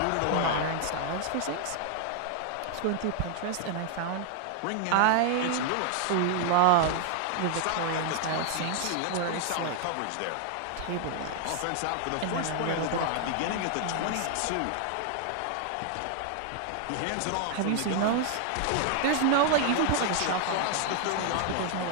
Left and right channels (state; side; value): different; both; correlation 0.00